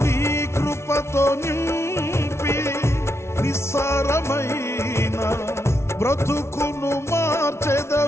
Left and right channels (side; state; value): right; late; 0.13 ms